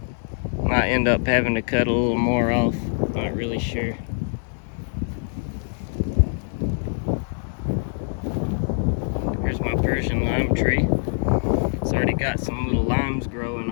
Might end up having to cut a little more off. Not really sure. Here's my Persian lime tree. It's already got some little limes growing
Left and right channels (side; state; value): right; silent; digital silence